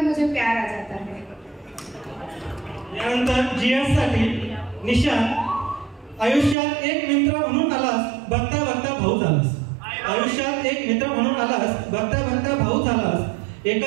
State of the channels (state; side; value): drops out; left; at 6.6 s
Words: मुझे प्यार आ जाता है. यानंतर GS साठी निशा. आयुष्यात एक मित्र म्हणून आलास, बघता बघता भाऊ झालास. आयुष्यात एक मित्र म्हणून आलास, बघता बघता भाऊ झालास.